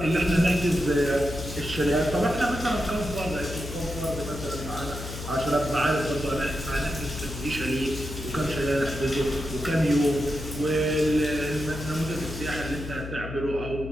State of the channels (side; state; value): left; noise; hum, 9 dB below the sound